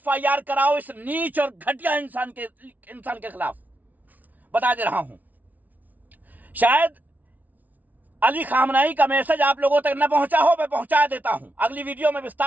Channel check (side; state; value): left; late; 0.077 ms